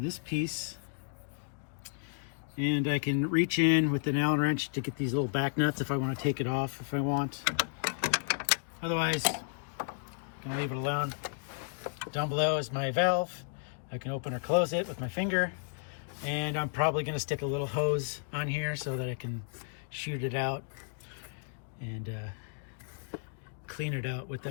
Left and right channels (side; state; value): right; silent; digital silence